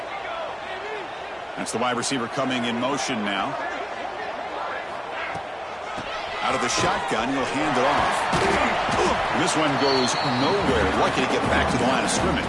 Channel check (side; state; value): both; identical; correlation 1.00